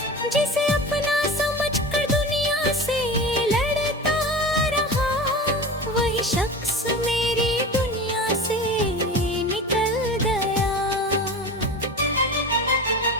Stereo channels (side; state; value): both; normal; correlation 0.32